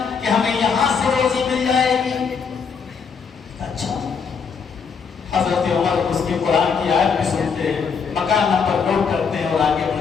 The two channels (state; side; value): quieter; right; 6.0 dB